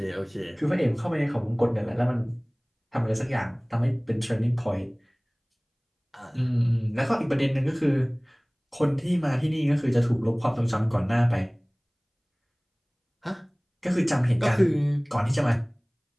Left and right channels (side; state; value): both; identical; correlation 1.00